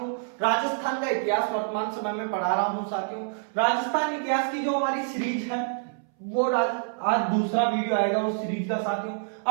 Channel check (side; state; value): left; silent; 60 dB below the other